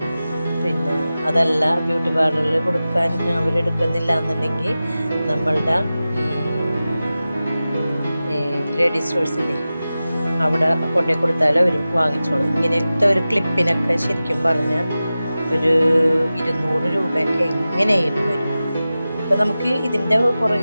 പിന്നെ അതല്ല ബ്യൂട്ടി പാർലറിൽ കൊടുക്കാൻ അവരെടുക്കുന്നില്ല എന്നുണ്ടെങ്കിൽ നമ്മളുടെ ലേഡീസ് സ്റ്റോഴ്സില്ലേ അവിടെ കൊണ്ടുപോയി കൊടുത്താലും അവർ വാങ്ങിച്ചോളും. ഇങ്ങനത്തെ ഒരു ക്ലിപ്പിനൊക്കെ ശരിക്കും പറഞ്ഞാൽ ഒരു 200 രൂപയൊക്കെ എങ്ങനെയായിരുന്നു വരും. ഇപ്പം നമുക്ക് ഇതിൻ്റെ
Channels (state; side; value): inverted; both; correlation -0.95